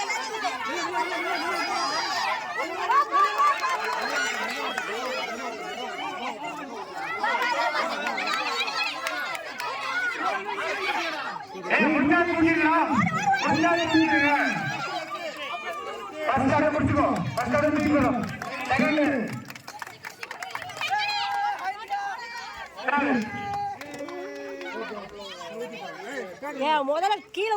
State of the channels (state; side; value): identical; both; correlation 1.00